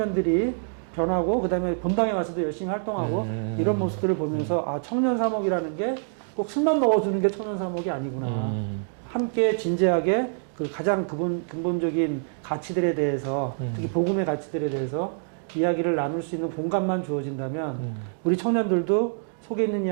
변하고 그다음에 본당에 와서도 열심히 활동하고 이런 모습들을 보면서 아 청년 사목이라는 게 꼭 술만 먹어주는 게 청년 사목이 아니구나. 함께 진지하게 그 가장 근본적인 가치들에 대해서 특히 복음의 가치들에 대해서 이야기를 나눌 수 있는 공간만 주어진다면 우리 청년들도 속에 있는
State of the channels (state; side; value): silent; left; digital silence